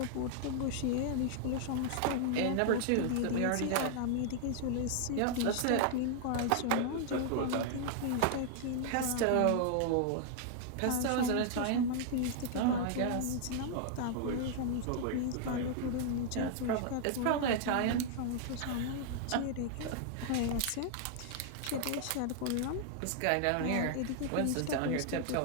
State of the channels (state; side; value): different; both; correlation -0.01